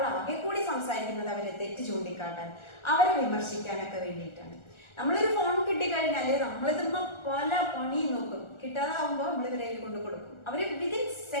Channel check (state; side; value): late; right; 1.4 ms